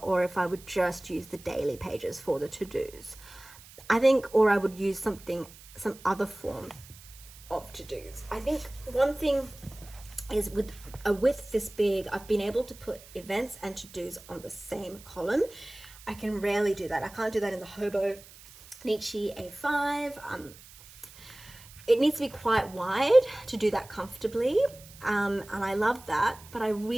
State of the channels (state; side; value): noise; right; hiss, 20 dB below the sound